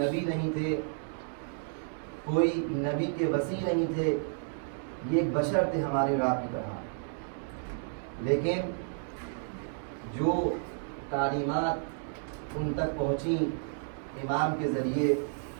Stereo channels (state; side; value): silent; left; digital silence